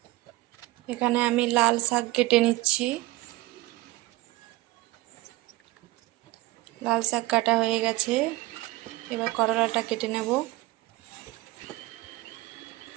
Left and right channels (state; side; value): quieter; left; 19.2 dB